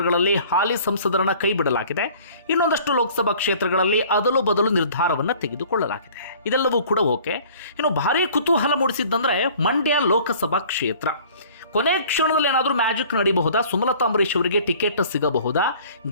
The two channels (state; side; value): inverted; both; correlation -0.50